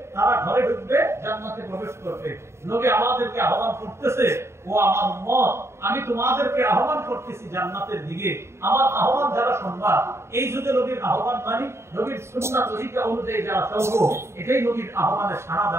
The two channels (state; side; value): late; left; 0.13 ms